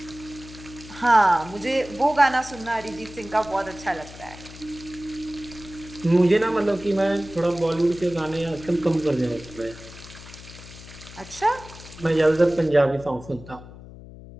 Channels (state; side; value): noise; left; hum, 17 dB below the sound